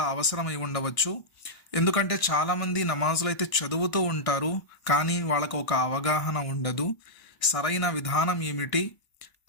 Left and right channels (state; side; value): late; right; 1.6 ms